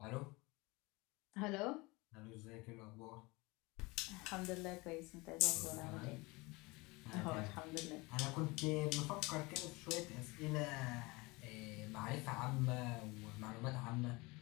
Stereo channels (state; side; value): quieter; right; 24.4 dB